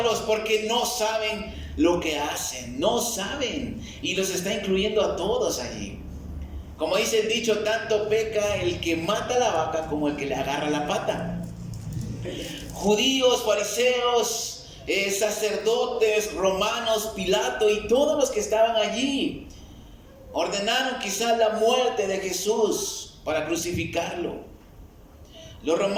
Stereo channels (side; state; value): both; identical; correlation 1.00